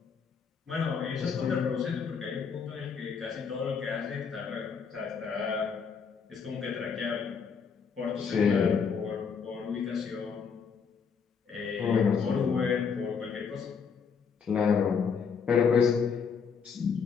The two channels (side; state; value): right; quieter; 6.1 dB